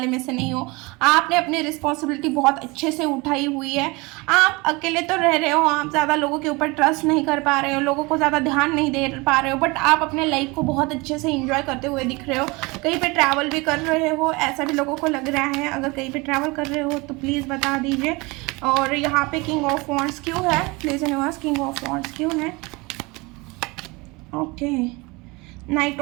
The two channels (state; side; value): quieter; left; 25.2 dB